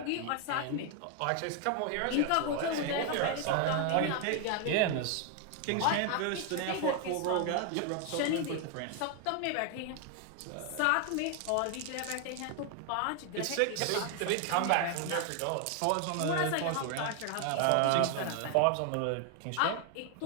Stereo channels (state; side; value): different; both; correlation 0.00